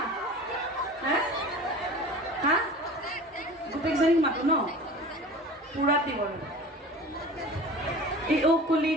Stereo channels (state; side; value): normal; both; correlation 0.39